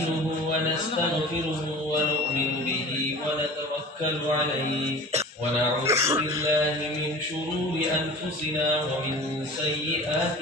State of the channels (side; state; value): both; normal; correlation 0.39